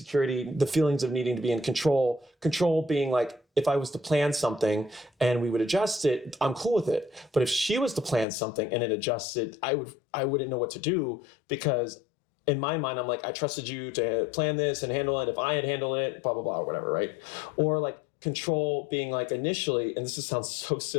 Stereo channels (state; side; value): drops out; right; at 8.2 s